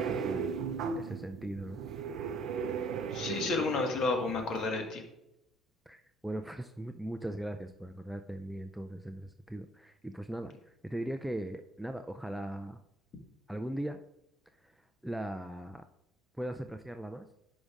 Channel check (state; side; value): normal; both; correlation 0.63